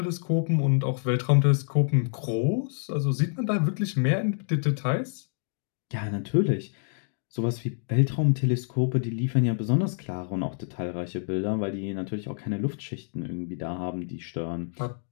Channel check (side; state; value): right; silent; digital silence